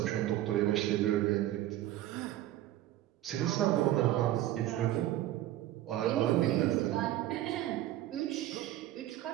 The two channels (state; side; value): quieter; left; 14.0 dB